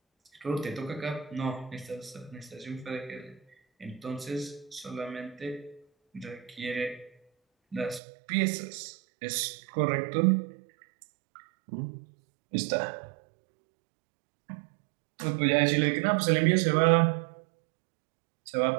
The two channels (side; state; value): left; drops out; at 8.0 s